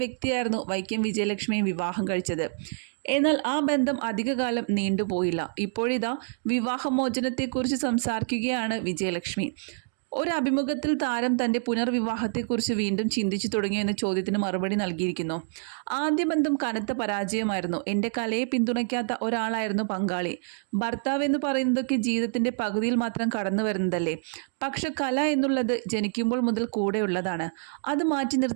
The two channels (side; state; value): left; silent; 60 dB below the other